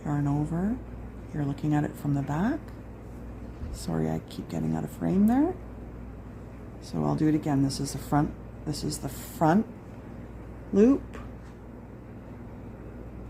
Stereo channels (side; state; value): both; identical; correlation 1.00